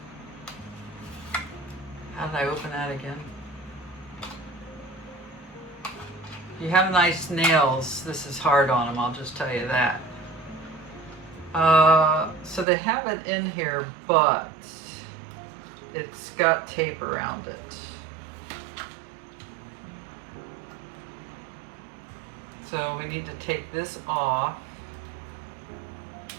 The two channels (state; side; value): drops out; left; at 12.7 s